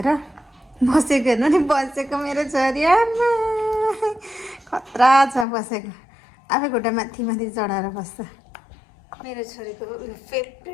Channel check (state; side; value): drops out; right; at 5.5 s